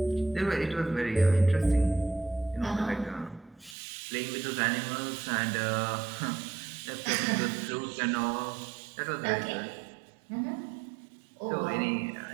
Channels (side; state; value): left; drops out; at 3.8 s